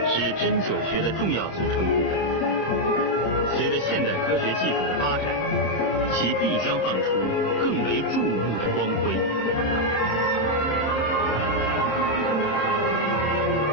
是针灸学的重要组成部分。随着现代科学技术的发展，其必将放出更为注目的光辉。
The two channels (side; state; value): right; late; 26 ms